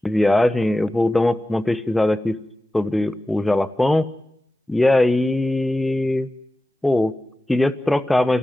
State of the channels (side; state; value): both; normal; correlation 0.95